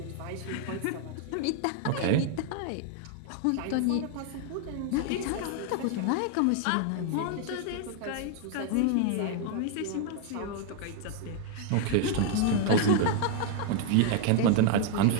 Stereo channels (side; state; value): both; different; correlation 0.00